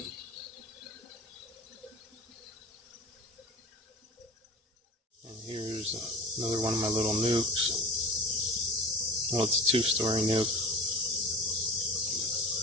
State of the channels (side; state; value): both; normal; correlation 0.37